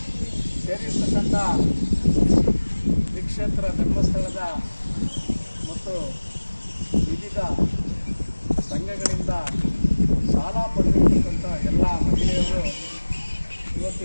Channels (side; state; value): both; inverted; correlation -1.00